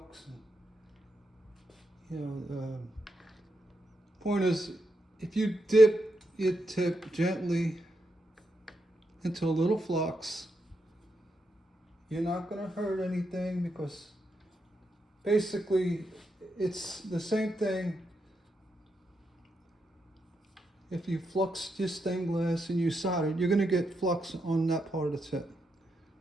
Point is, if you dip your tip gently into a little flux, you're not gonna hurt anything because basically it's the same thing. If you flux your stained glass and you solder, you're going to get flux on that part of the tip.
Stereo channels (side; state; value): both; normal; correlation 0.83